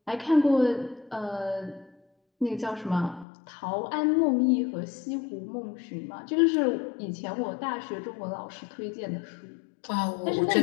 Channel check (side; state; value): right; drops out; at 3.2 s